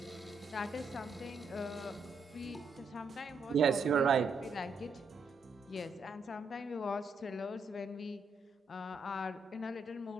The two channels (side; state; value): left; quieter; 3.5 dB